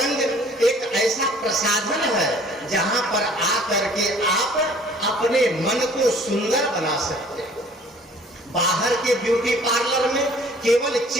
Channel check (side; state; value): both; normal; correlation 0.53